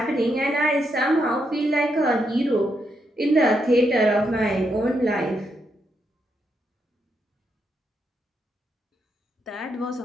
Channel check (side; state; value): both; normal; correlation 0.80